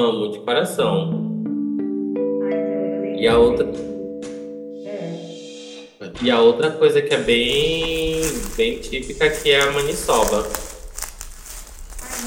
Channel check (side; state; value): both; identical; correlation 1.00